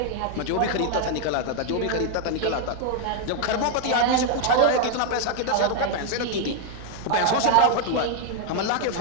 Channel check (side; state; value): both; different; correlation 0.00